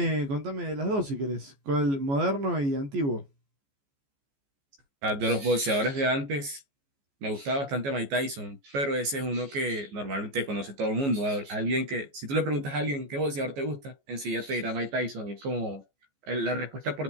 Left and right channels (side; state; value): left; late; 14 ms